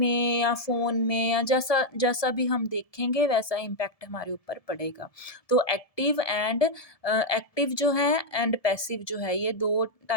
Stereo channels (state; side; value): late; right; 1.7 ms